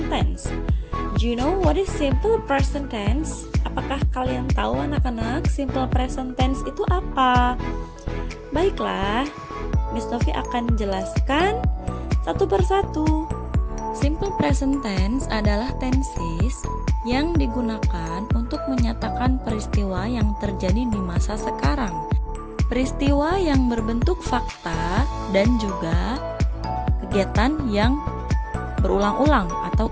tense. Do you know what is simple present tense? Apakah kalian tahu anak-anak simple present tense itu apa? Baiklah, Miss Novi akan jelaskan satu persatu. Simple present tense adalah tenses yang digunakan untuk menyatakan peristiwa yang terjadi di masa sekarang. Peristiwa yang berbentuk fakta dan juga kegiatan yang berulang-ulang atau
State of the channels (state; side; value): identical; both; correlation 1.00